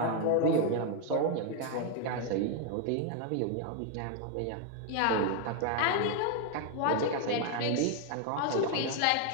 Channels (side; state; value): both; different; correlation 0.01